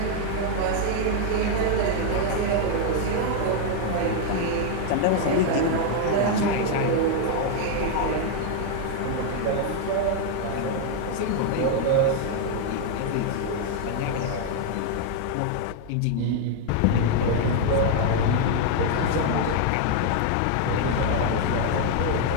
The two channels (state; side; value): different; both; correlation 0.00